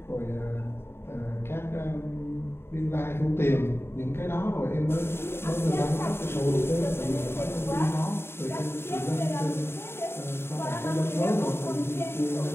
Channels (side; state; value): right; late; 0.12 ms